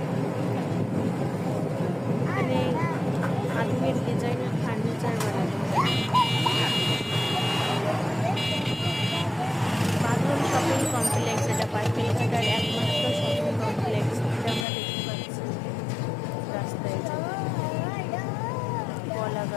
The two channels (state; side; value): drops out; right; at 14.7 s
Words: এখানে আধুনিক ডিজাইনের ফার্নিচার বানানো হয়। বাঁধন শপিং কমপ্লেক্স, এটা পাটকেলঘাটার একমাত্র শপিং কমপ্লেক্স, এটা আমরা দেখতে পাচ্ছি রাস্তায়। কলা